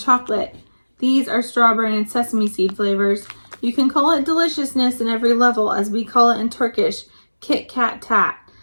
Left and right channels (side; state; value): both; inverted; correlation -1.00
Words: These are strawberry and sesame seed flavors. You can call it deliciousness in every level, as we call it in Turkish, Kit Kat Tat.